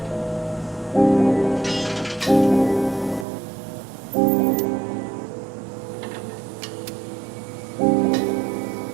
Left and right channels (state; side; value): drops out; left; at 3.2 s